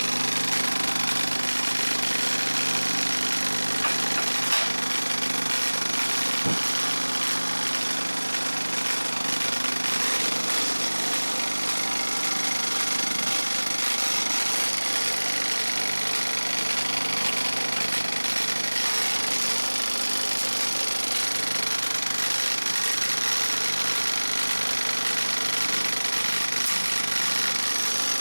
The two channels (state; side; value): inverted; both; correlation -1.00